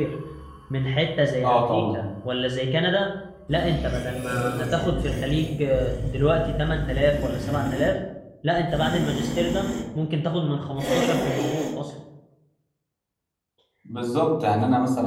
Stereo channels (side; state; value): both; identical; correlation 1.00